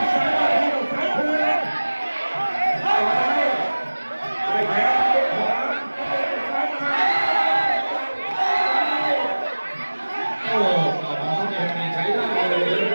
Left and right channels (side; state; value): both; inverted; correlation -1.00